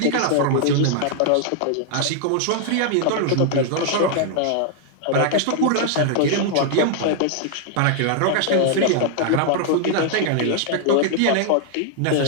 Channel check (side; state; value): both; different; correlation -0.01